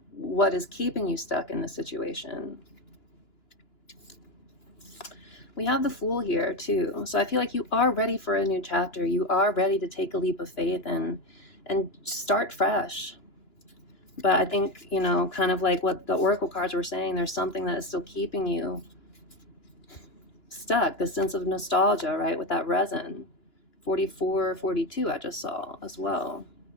what is keeping you stuck in the situation. We have the Fool here too. So I feel like you are ready for a new chapter. You are ready to take a leap of faith and start fresh. But I think, kind of like what the Oracle cards were saying, there's something that is still keeping you stuck, the sense of nostalgia, right? With that resin. 44, 42 I just saw as well.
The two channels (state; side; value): late; right; 2.9 ms